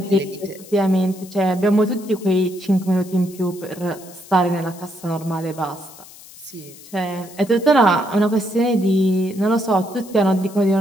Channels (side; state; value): left; noise; hiss, 20 dB below the sound